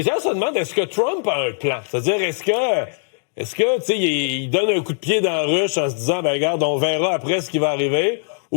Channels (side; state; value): right; silent; digital silence